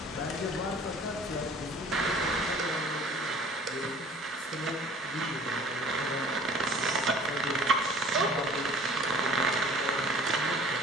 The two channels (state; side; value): normal; both; correlation 0.50